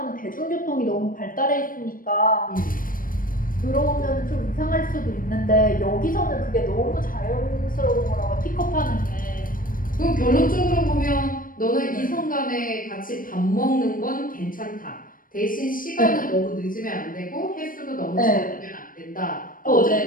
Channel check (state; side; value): late; right; 0.40 ms